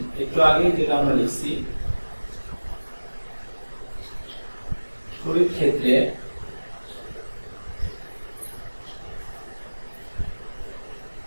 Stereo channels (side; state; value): both; inverted; correlation -1.00